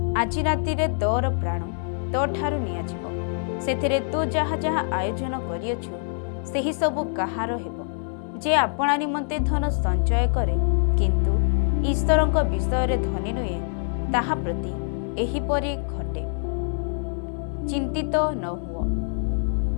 ଆଜି ରାତିରେ ତୋର ପ୍ରାଣ ତୋଠାରୁ ନିଆଯିବ। ସେଥିରେ ତୁ ଯାହା ଯାହା ଆୟୋଜନ କରିଅଛୁ ସେହି ସବୁ କାହାର ହେବ? ଯେ ଆପଣା ନିମନ୍ତେ ଧନ ସଞ୍ଚୟ କରେ କିନ୍ତୁ ଈଶ୍ୱରଙ୍କ ବିଷୟରେ ଧନୀ ନୁହେଁ, ତାହା ପ୍ରତି ଏହିପରି ଘଟେ। ଚିନ୍ତିତ ନ ହୁଅ।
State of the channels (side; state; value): right; silent; 62 dB below the other